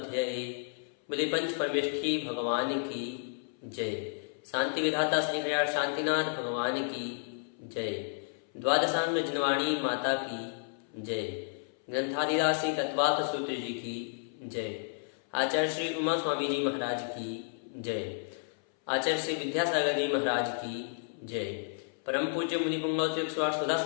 बोले पंच परमेष्ठी भगवान की जय। शांति विधाता श्री हरियाण शांतिनाथ भगवान की जय। द्वादशांग जनवाणी माता की जय। ग्रंथादिदास श्री तत्वार्थ सूत्र जी की जय। आचार्य श्री उमा स्वामी जी महाराज की जय। आचार्य श्री विद्यासागर जी महाराज की जय। परम पूज्य मुनि पुंगव श्री 108 सुधा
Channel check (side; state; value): right; silent; 57 dB below the other